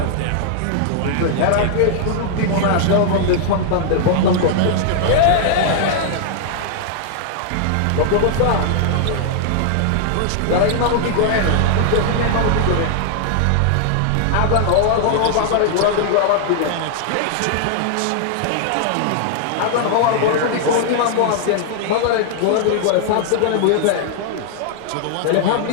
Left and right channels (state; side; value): different; both; correlation 0.00